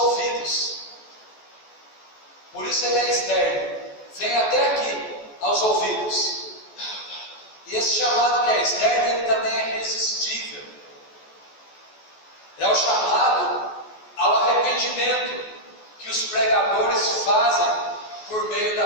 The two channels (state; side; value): late; right; 14 ms